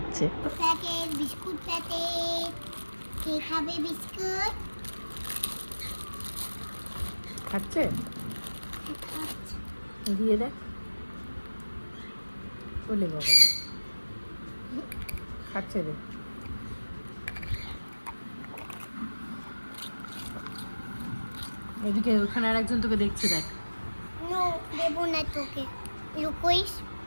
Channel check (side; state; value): both; inverted; correlation -1.00